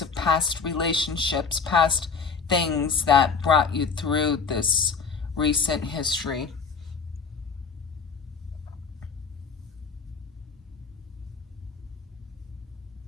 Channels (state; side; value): quieter; right; 5.4 dB